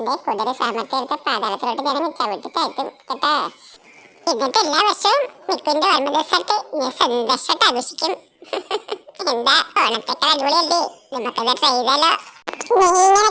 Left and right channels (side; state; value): both; identical; correlation 1.00